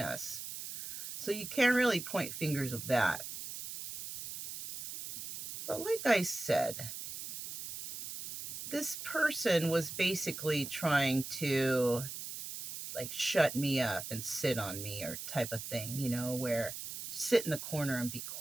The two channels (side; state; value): right; noise; hiss, 8 dB below the sound